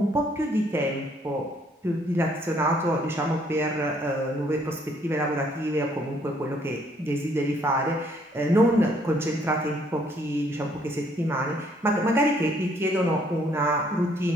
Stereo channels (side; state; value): both; normal; correlation 0.66